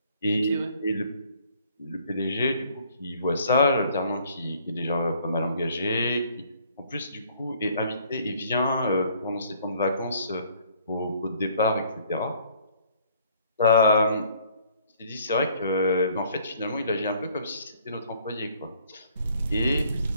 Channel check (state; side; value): inverted; both; correlation -0.61